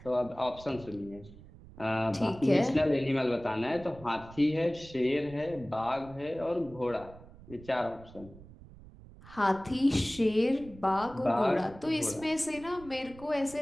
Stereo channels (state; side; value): noise; right; rumble, 19 dB below the sound